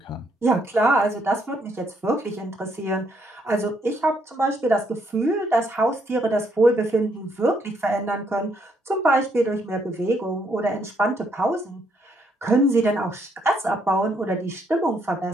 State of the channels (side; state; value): both; normal; correlation 0.72